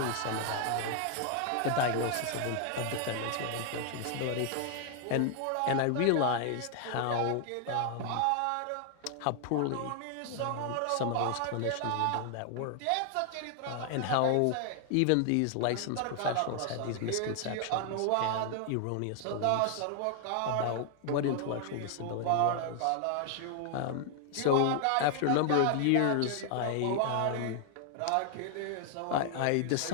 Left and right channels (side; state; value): both; different; correlation 0.00